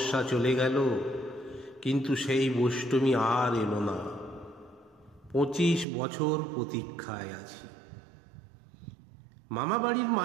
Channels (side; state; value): left; drops out; at 5.9 s